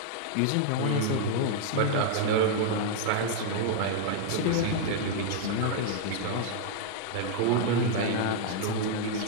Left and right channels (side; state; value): both; different; correlation 0.00